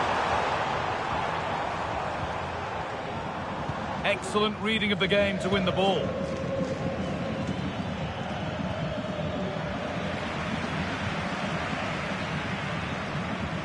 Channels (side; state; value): both; identical; correlation 1.00